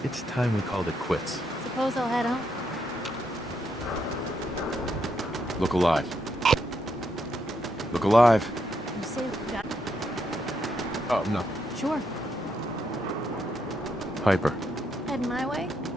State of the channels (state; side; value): normal; both; correlation 0.78